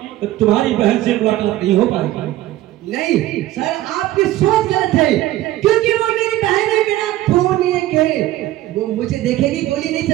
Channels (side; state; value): left; quieter; 15.3 dB